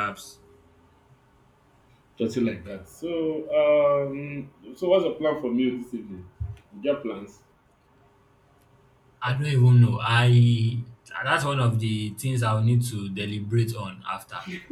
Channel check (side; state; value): both; identical; correlation 1.00